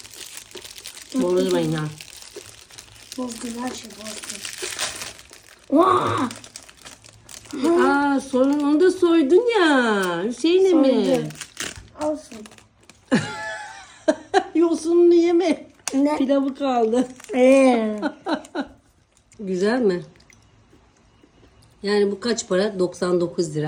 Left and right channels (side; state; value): both; identical; correlation 1.00